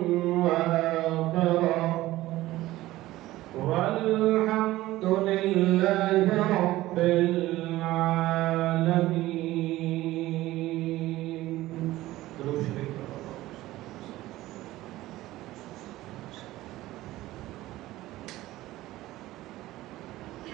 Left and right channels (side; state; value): left; quieter; 16.6 dB